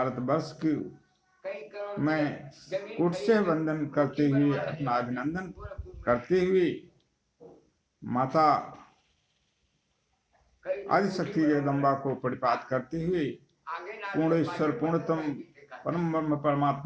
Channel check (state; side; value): identical; both; correlation 1.00